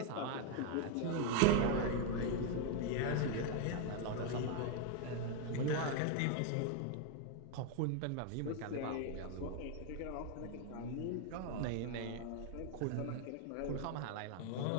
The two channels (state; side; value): different; both; correlation 0.01